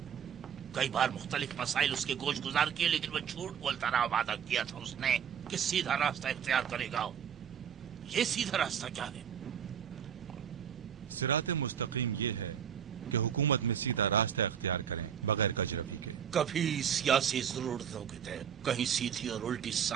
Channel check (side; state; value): left; quieter; 8.3 dB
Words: کئی بار مختلف مسائل اس کے گوش گزار کیے لیکن وہ جھوٹ بولتا رہا. وعدہ کیا تھا اس نے کہ سیدھا راستہ اختیار کرے گا. یہ سیدھا راستہ کیا ہے؟ کبھی سیاسی ضرورتوں کے تحت کہیں سیدھی اور الٹی